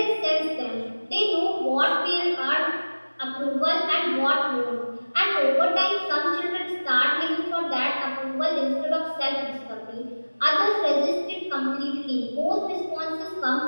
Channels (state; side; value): inverted; both; correlation -1.00